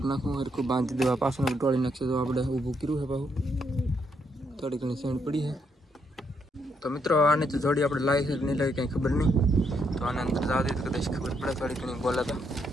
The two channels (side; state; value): both; normal; correlation 0.76